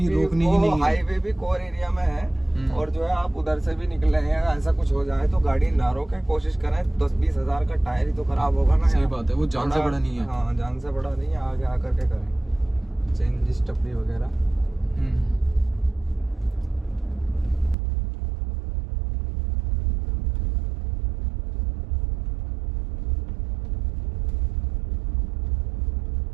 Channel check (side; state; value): left; drops out; at 17.8 s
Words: रोकनी ही वो नहीं है। हाईवे भी कोर एरिया में है। और जो है आप उधर से भी निकले हैं, ऐसा कुछ हो जाए तो गाड़ी ना रोके, कोशिश करें। 10-20 हजार का टायर ही तो खराब होगा ना। सही यार। बात है, वो जान से बड़ा नहीं है। हाँ जान से बड़ा नहीं है, आगे आकर के करें चेंज स्टपनी वगैरह।